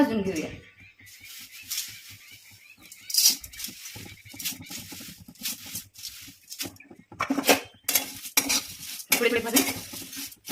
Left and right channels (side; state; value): both; identical; correlation 1.00